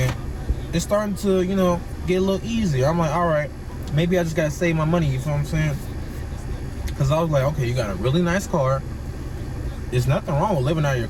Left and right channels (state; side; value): identical; both; correlation 1.00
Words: it's starting to, you know, get a little easier. I'm like, all right, maybe I just gotta save my money. You feel what I'm saying? Because I was like, okay, you got a really nice car. There's nothing wrong with living out of your